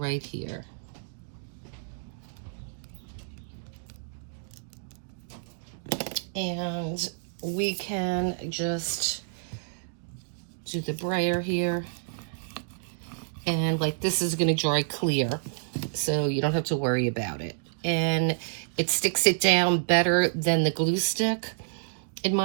here. And we can just do the brayer here. And like this is going to dry clear, so you don't have to worry about it. And it sticks it down better than the glue stick, in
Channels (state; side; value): silent; left; digital silence